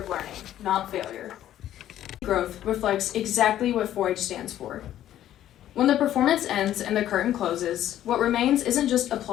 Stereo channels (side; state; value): right; quieter; 12.1 dB